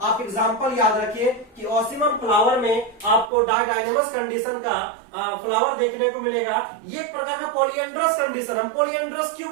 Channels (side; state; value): left; drops out; at 3.3 s